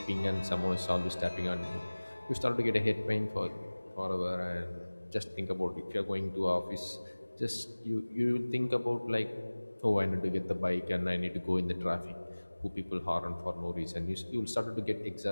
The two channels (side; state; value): both; inverted; correlation -1.00